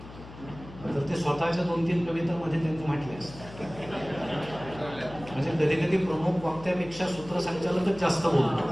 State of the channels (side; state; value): left; noise; hum, 16 dB below the sound